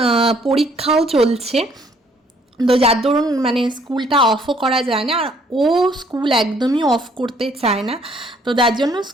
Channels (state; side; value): normal; both; correlation 0.63